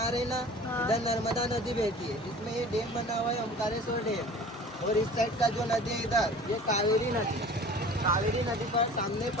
रहे हैं ना, इधर नर्मदा नदी बहती है, जिसमें ये डैम बना हुआ है ओमकारेश्वर डैम। और इस साइड का जो नदी है इधर, ये कावेरी नदी। कावेरी नदी पर सामने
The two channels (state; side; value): normal; both; correlation 0.43